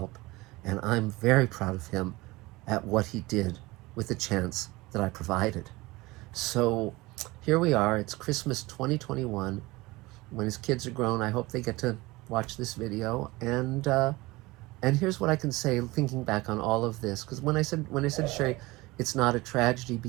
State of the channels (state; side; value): quieter; left; 21.3 dB